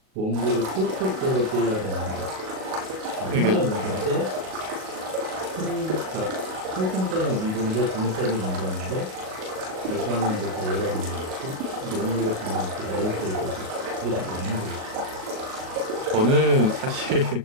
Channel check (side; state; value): left; late; 37 ms